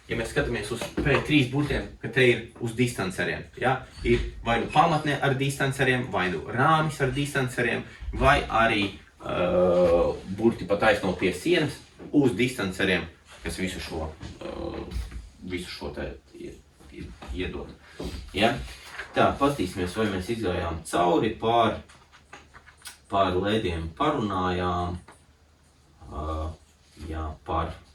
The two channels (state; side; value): identical; both; correlation 1.00